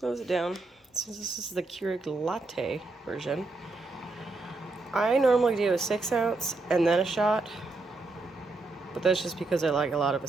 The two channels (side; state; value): left; quieter; 3.4 dB